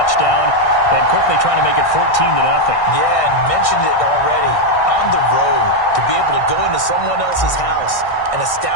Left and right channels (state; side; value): late; right; 1.6 ms